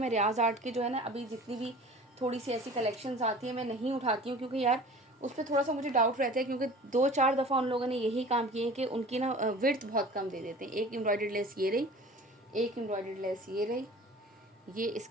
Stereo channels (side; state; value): both; normal; correlation 0.42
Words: मैं रियाज आर्ट की जो है ना अभी जितनी भी थोड़ी सी ऐसी कलेक्शंस आती है मैं नहीं उठाती हूँ, क्योंकि यार उस पर थोड़ा सा मुझे डाउट रहता है, क्योंकि 2-4 दफ़ा उन लोगों ने यही काम किए हैं कि उनकी ना विड्थ बहुत कम दे देते हैं। एक एम्ब्रॉयडर्ड लेस ये रही, एक एम्ब्रॉयडर्ड लेस ये रही, ये